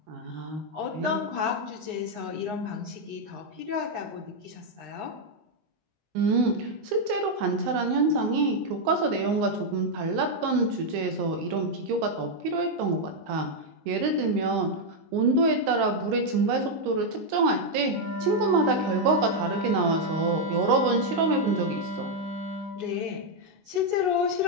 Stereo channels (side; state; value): left; late; 19 ms